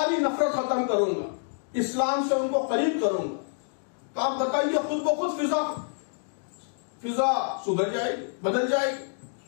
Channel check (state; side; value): silent; right; digital silence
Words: نفرت ختم کروں گا، اسلام سے ان کو قریب کروں گا، تو آپ بتائیے خود بخود فضا سدھر جائے گی، بدل جائے گی۔